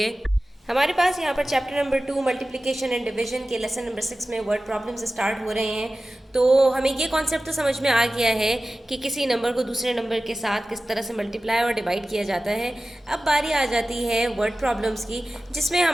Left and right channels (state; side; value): normal; both; correlation 0.95